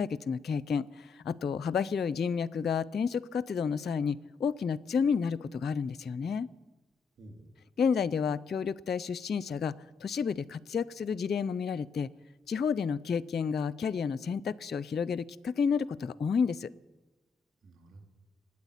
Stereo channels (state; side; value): quieter; right; 5.9 dB